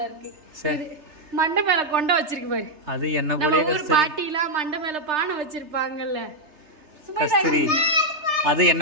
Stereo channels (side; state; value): left; late; 3.3 ms